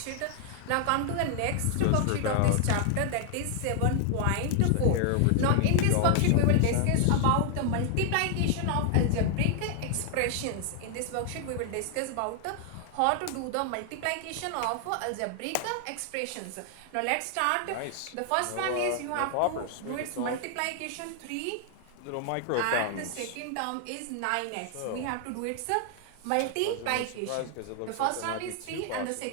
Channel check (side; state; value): both; different; correlation 0.00